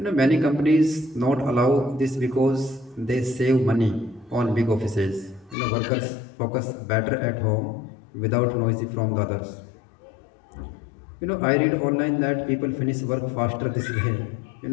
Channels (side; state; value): right; drops out; at 5.6 s